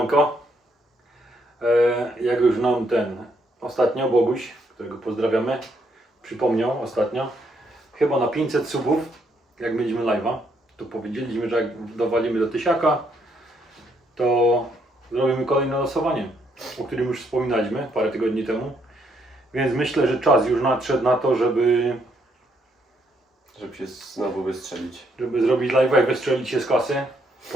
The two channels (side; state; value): both; normal; correlation 0.73